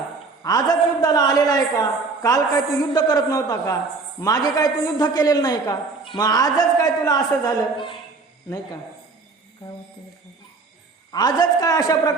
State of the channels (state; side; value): quieter; left; 4.1 dB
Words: आजच युद्धाला आलेला आहे का. काल काय तू युद्ध करत नव्हता का. मागे काय तू युद्ध केलेलं नाही का. मग आजच काय तुला असं झालं. नाही का काय होतं आजच काय अशा